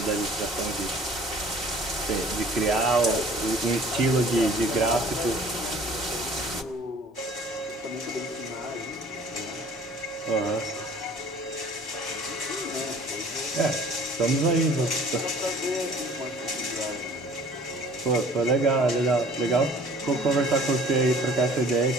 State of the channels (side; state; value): both; normal; correlation 0.51